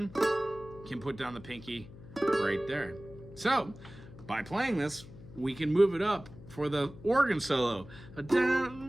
can put down the pinky right there. So, by playing this, we can move it up for the organ solo.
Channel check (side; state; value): left; noise; hum, 17 dB below the sound